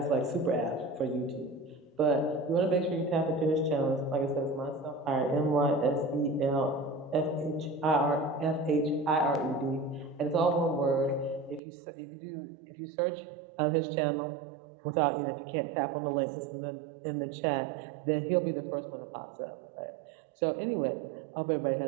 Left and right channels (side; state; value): left; drops out; at 11.6 s